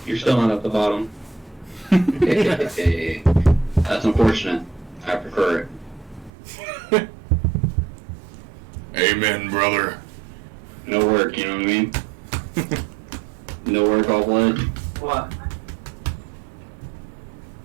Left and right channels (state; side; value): drops out; left; at 6.3 s